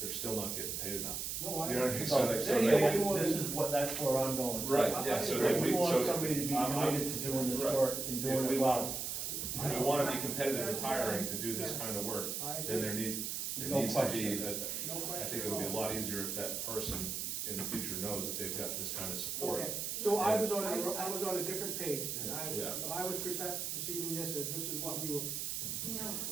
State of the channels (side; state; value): right; noise; hiss, 3 dB below the sound